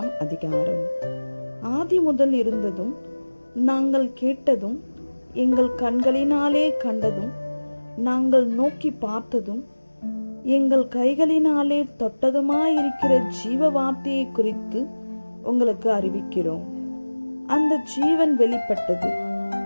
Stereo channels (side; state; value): both; inverted; correlation -1.00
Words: அதிகாரம். ஆதி முதல் இருந்ததும் நாங்கள் கேட்டதும் எங்கள் கண்களினாலே கண்டதும் நாங்கள் நோக்கி பார்த்ததும் எங்கள் கைகளினாலே தொட்டதுமாயிருக்கிற ஜீவ வார்த்தையை குறித்து உங்களுக்கு அறிவிக்கிறோம். அந்த ஜீவன் வெளிப்பட்டது,